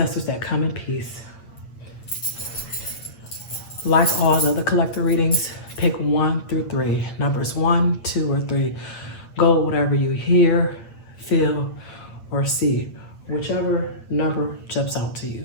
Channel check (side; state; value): right; late; 8.7 ms